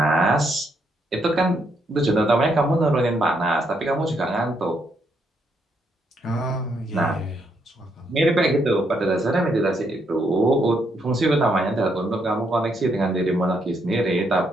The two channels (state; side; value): normal; both; correlation 0.76